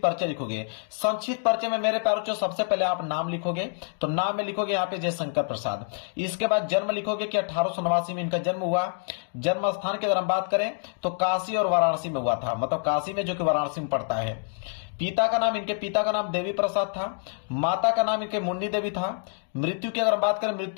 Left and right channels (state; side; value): silent; right; 60 dB below the other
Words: परिचय लिखोगे। संक्षिप्त परिचय में मेरे प्यारों, सबसे पहले आप नाम लिखोगे, तो नाम में लिखोगे यहाँ पे जयशंकर प्रसाद। इसके बाद जन्म लिखोगे कि 1889 में इनका जन्म हुआ। जन्म स्थान की अगर हम बात करें तो काशी और वाराणसी में हुआ था, मतलब काशी में जो कि वाराणसी में पड़ता है। पिता का नाम, इनके पिता का नाम देवी प्रसाद था। माता का नाम इनके मुन्नी देवी था। मृत्यु की अगर हम बात करें,